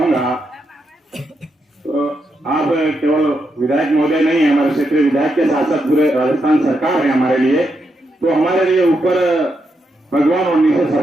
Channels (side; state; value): both; normal; correlation 0.82